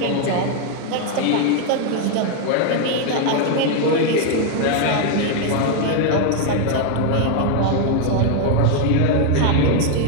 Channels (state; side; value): different; both; correlation 0.01